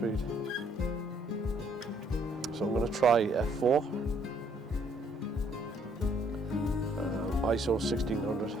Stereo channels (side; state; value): both; normal; correlation 0.66